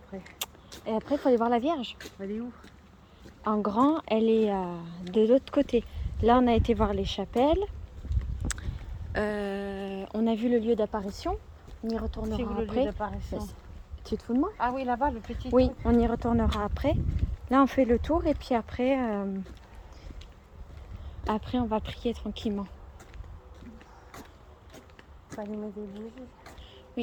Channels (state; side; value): identical; both; correlation 1.00